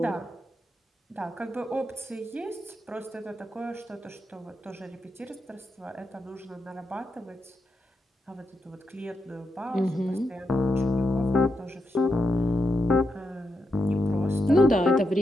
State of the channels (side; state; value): both; normal; correlation 0.85